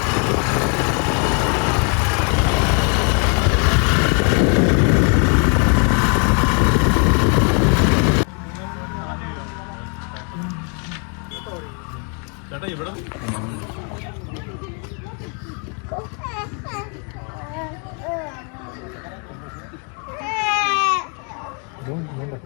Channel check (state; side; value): quieter; right; 38.0 dB